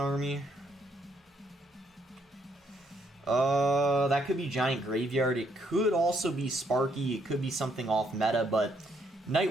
That could be Giant Graveyard. It could also be Sparky. It could be something off meta, but Night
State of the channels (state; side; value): normal; both; correlation 0.72